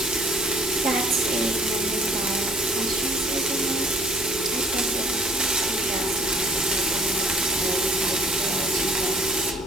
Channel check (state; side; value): noise; left; hum, 18 dB below the sound